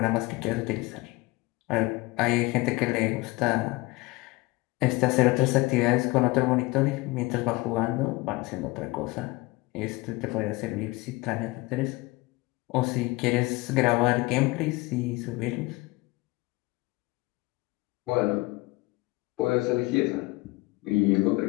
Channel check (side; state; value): right; quieter; 22.5 dB